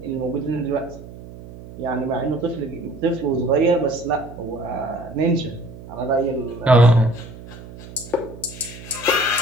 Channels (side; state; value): right; noise; hum, 15 dB below the sound